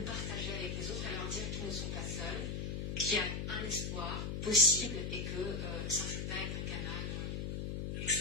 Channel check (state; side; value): noise; left; hum, 3 dB below the sound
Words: partager avec les autres et leur dire qu'ils ne sont pas seuls, qu'il y a un espoir possible et que Saint-Rita est un canal